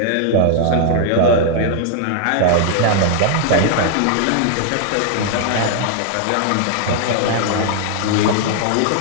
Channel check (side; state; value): both; different; correlation -0.01